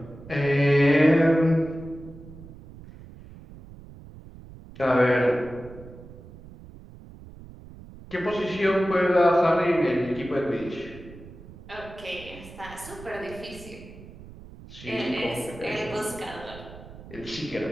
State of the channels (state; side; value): noise; right; rumble, 17 dB below the sound